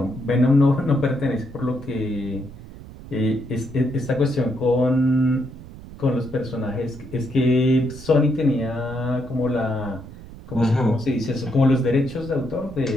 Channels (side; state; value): right; noise; rumble, 16 dB below the sound